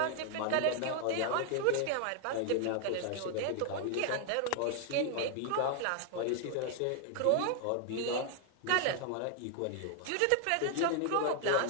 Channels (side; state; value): both; different; correlation 0.00